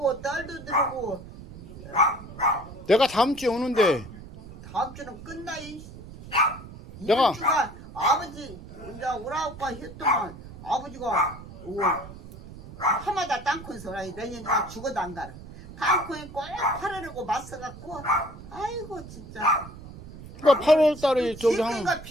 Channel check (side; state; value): right; noise; rumble, 15 dB below the sound